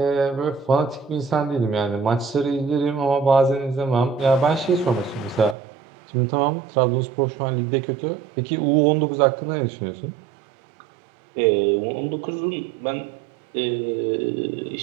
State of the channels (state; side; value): drops out; left; at 5.6 s